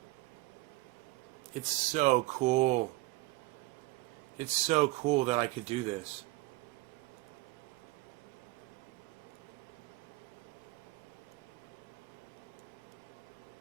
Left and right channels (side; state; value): left; quieter; 20.8 dB